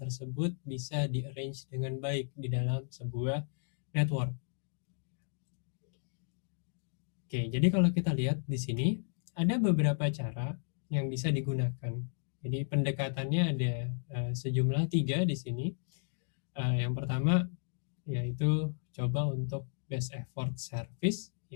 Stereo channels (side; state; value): right; silent; digital silence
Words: bisa di-arrange dengan baik di dalam sebuah network. Oke, jadi kalau kita lihat di sini ada beberapa cara yang bisa digunakan. Jadi pendekatannya ada sejumlah 3 di sini. Yang pertama yaitu coba untuk best effort service.